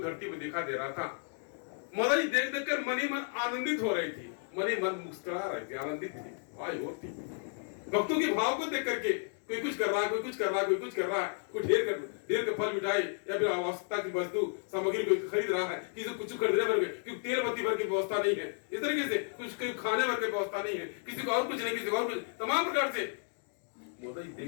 धरती में देखा दे रहा था। माता जी देख देख कर मन ही मन आनंदित हो रही थी, मन ही मन मुस्कुरा रहे थे, आनंदित थी, वाह और थी। भक्तों के भाव को देख करके कोई कुछ कर रहा है, कोई कुछ कर रहा है, कोई कुछ कर रहा है, कोई ढेर के फल मिठाई या फिर आवश्यकता की वस्तु सामग्री कोई खरीद रहा है, किसी को कुछ खरीदने भर क्योंकि तेल बत्ती भर की व्यवस्था नहीं है, इस तरीके से कुछ खाने भर की व्यवस्था नहीं है, किसी को और कुछ नहीं, किसी को और कुछ, तमाम प्रकार से माता जी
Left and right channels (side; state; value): right; silent; 56 dB below the other